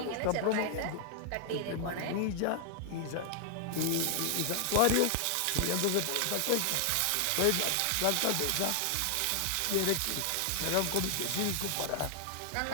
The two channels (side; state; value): both; different; correlation 0.00